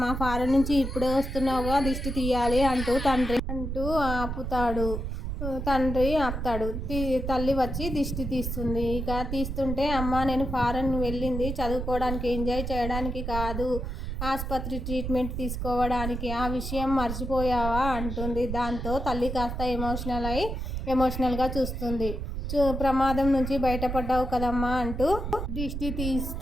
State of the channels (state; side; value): noise; right; rumble, 4 dB below the sound